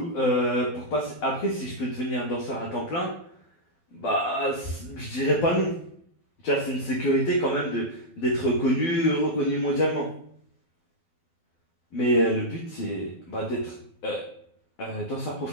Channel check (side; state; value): right; late; 12 ms